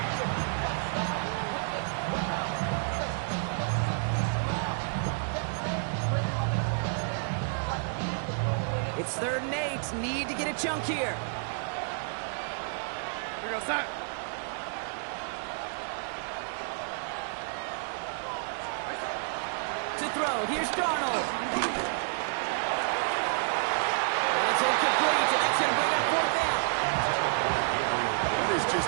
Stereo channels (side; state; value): left; silent; digital silence